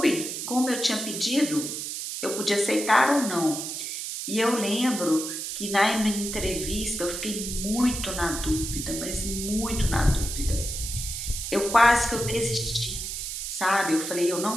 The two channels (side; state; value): right; noise; hiss, 5 dB below the sound